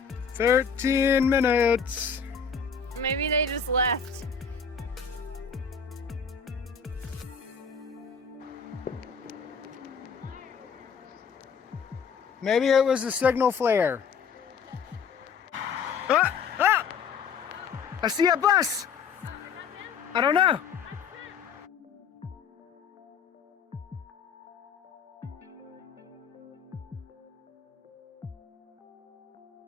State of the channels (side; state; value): right; quieter; 6.1 dB